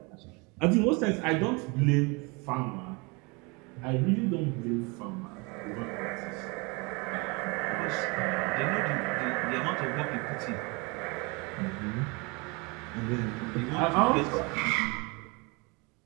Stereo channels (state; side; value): quieter; left; 28.8 dB